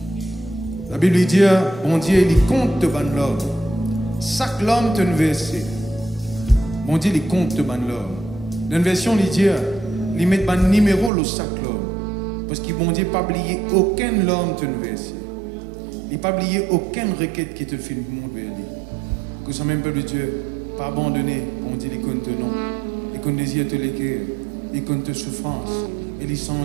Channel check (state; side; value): drops out; left; at 11.1 s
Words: La Bible dit, bon Dieu, il compte de ban l'homme. Chaque homme te versé. Bon Dieu, il compte de ban l'homme. Dans une version, il dit, il met ban numéro le chaque homme. Parce que bon Dieu n'a pas oublié aucun homme te versé. Il n'a pas oublié aucune requête qui te fait le monde vers lui. Que ce même peuple de Dieu, pas abandonné, bon Dieu, il compte non. Il compte désir te l'écrire. Il compte tes souffrances. Et il